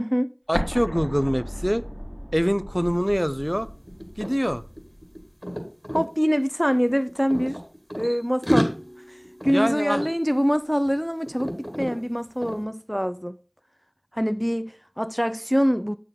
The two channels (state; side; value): identical; both; correlation 1.00